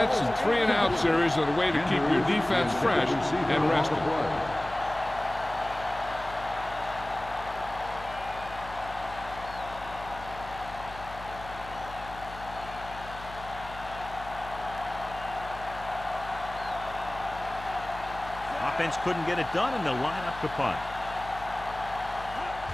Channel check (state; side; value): noise; left; hum, 15 dB below the sound